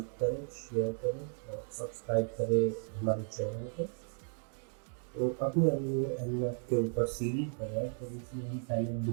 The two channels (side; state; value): left; silent; 55 dB below the other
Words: करें, शेयर करें और सब्सक्राइब करें हमारे चैनल को। तो अपने अभी वो एनमैप के ऊपर सीरीज बनाया, तो इसमें हम पहले